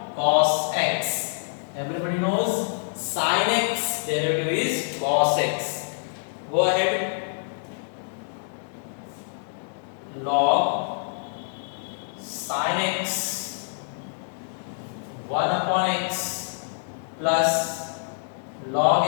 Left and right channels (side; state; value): right; silent; digital silence